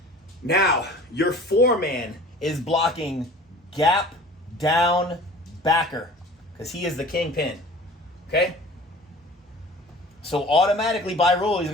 Now, your 4-man is blocking gap down backer because he is the kingpin. Okay? So automatically by rule he's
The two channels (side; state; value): both; normal; correlation 0.44